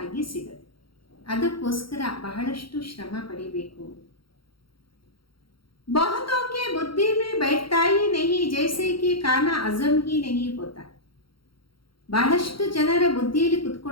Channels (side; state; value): right; late; 0.74 ms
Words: ಸಿಗತ್ತೆ. ಅದಕ್ಕೋಸ್ಕರ ಬಹಳಷ್ಟು ಶ್ರಮ ಪಡಿಬೇಕು. बहुतों के बुद्धि में बैठता ही नहीं, जैसे कि खाना हजम ही नहीं होता. ಬಹಳಷ್ಟು ಜನರ ಬುದ್ಧಿಯಲ್ಲಿ